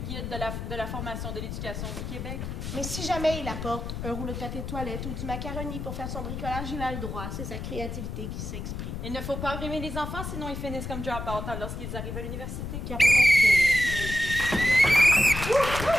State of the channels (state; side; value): noise; left; rumble, 6 dB below the sound